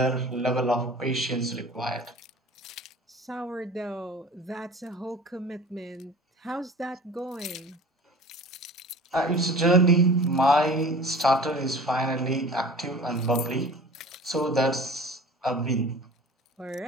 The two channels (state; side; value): normal; both; correlation 0.42